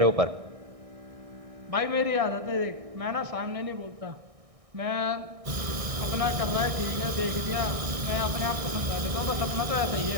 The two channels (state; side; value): late; left; 1.6 ms